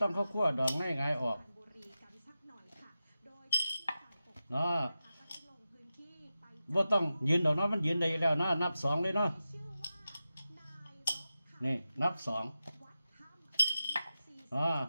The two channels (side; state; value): both; inverted; correlation -0.92